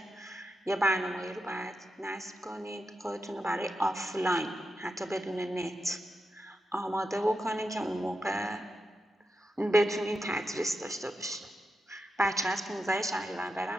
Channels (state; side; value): normal; both; correlation 0.88